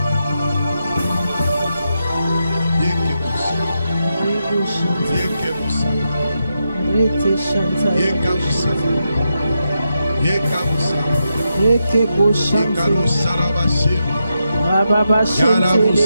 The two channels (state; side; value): inverted; both; correlation -0.85